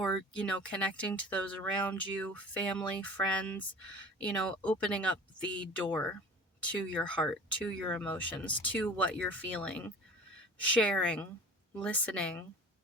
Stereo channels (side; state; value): both; normal; correlation 0.41